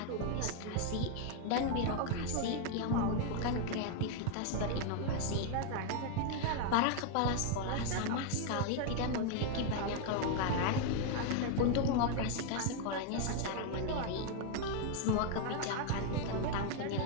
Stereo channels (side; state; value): both; different; correlation 0.00